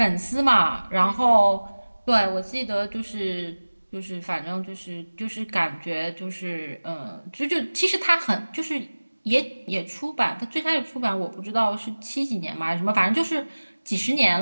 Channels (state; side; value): inverted; both; correlation -1.00